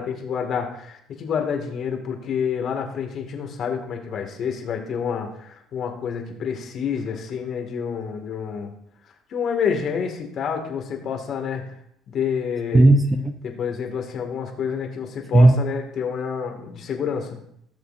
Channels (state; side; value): normal; both; correlation 0.78